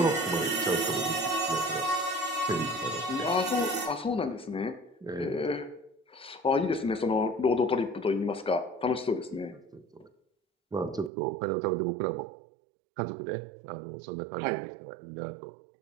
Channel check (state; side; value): drops out; left; at 11.1 s